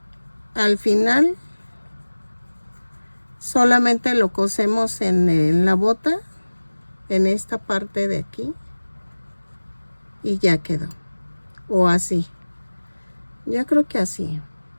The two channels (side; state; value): both; inverted; correlation -1.00